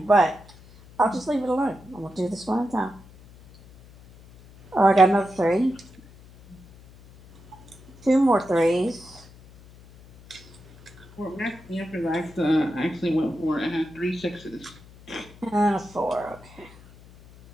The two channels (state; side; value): noise; left; hum, 23 dB below the sound